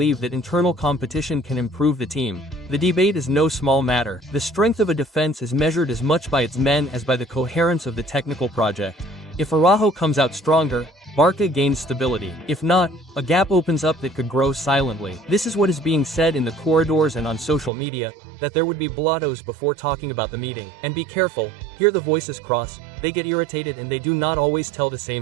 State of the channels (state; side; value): drops out; left; at 17.7 s